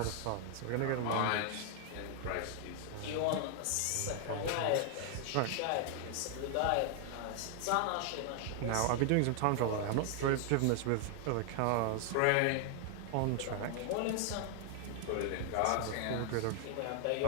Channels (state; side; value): different; both; correlation 0.00